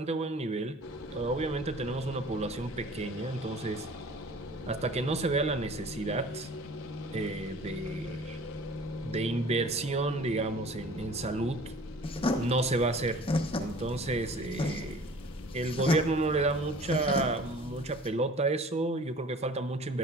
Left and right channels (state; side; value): normal; both; correlation 0.47